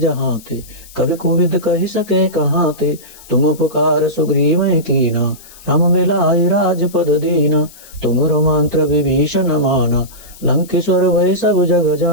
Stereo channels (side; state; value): left; noise; hiss, 21 dB below the sound